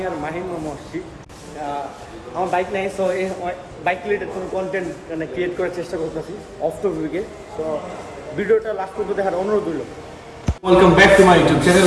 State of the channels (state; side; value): identical; both; correlation 1.00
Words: আর মাহিম মামু আসছি। আমার বাইক নেই, সো এই বাইক রিলেটেড কোনো কন্টেন্ট মানে ক্রিয়েট করার চেষ্টা করতেছি অফ টপিকে। সো ভিডিওটা লাস্ট পর্যন্ত দেখার অনুরোধ রইল। Welcome back to my YouTube